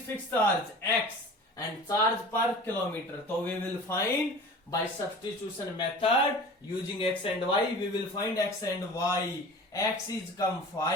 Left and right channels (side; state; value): both; normal; correlation 0.39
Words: fixed charge? X and charge per kilometer. So we will find by substitution method using x and y. We will find x and y. X is come